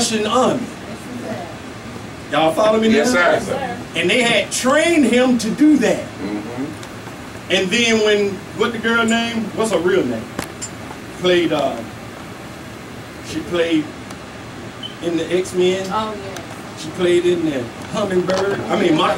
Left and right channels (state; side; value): identical; both; correlation 1.00